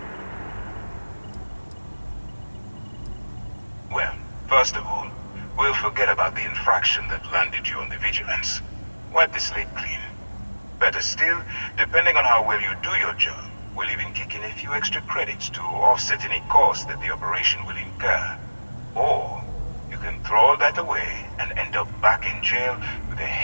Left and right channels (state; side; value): inverted; both; correlation -1.00